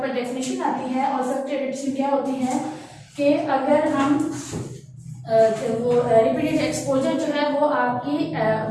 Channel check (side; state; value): both; identical; correlation 1.00